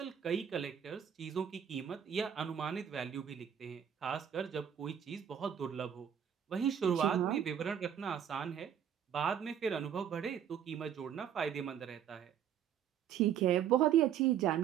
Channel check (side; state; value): left; quieter; 9.0 dB